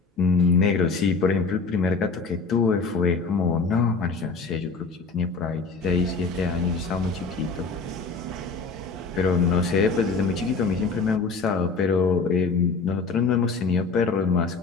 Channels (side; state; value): right; quieter; 4.3 dB